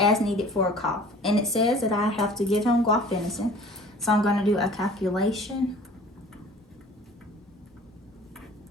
needed for a cough, and it says that I have to give him guaifenesin. So I'm going to do a calculation.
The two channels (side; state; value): both; normal; correlation 0.48